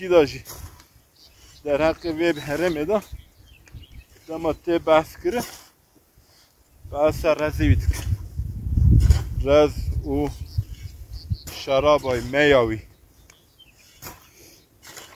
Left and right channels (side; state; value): both; identical; correlation 1.00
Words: da ji der hakkı web herem eda دما تی بحث کرده بحث رزی بیت رز و شرابای میاوی